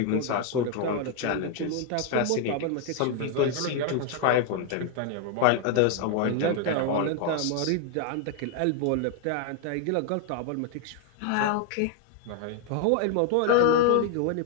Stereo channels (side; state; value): both; different; correlation 0.00